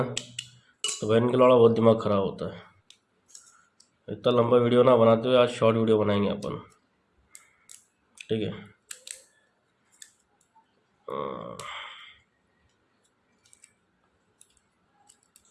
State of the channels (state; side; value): identical; both; correlation 1.00